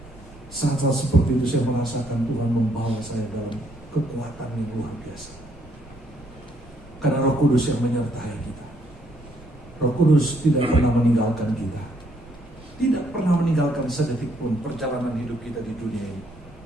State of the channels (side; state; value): both; normal; correlation 0.69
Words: Saat-saat seperti itu saya merasakan Tuhan membawa saya dalam kekuatan yang luar biasa. Karena Roh Kudus yang menyertai kita. Roh Kudus tidak pernah meninggalkan kita. Tidak pernah meninggalkan sedetik pun perjalanan hidup kita di dunia ini.